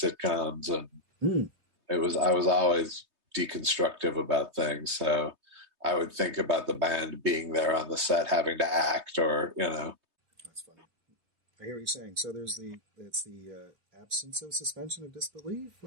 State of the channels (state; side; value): late; left; 3.2 ms